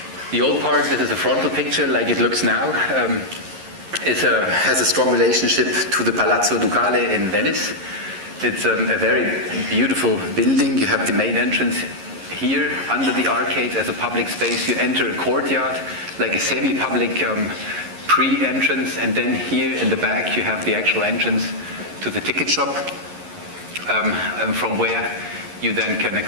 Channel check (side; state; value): left; late; 11 ms